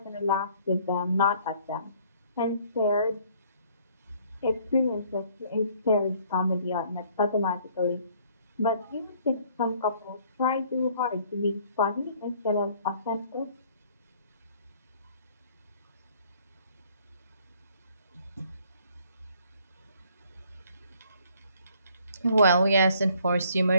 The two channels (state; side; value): inverted; both; correlation -0.60